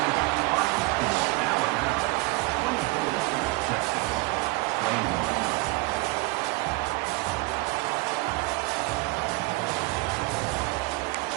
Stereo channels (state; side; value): quieter; left; 24.2 dB